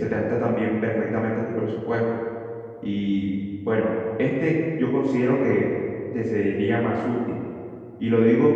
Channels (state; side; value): identical; both; correlation 1.00